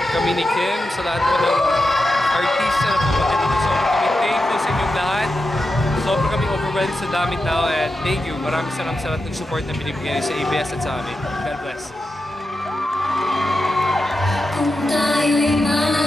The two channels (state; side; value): normal; both; correlation 0.89